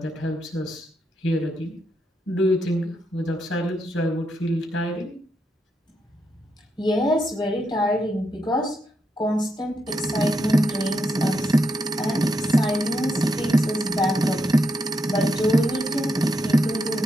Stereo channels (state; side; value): normal; both; correlation 0.81